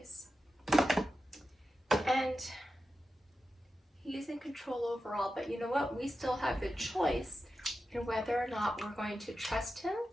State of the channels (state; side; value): normal; both; correlation 0.91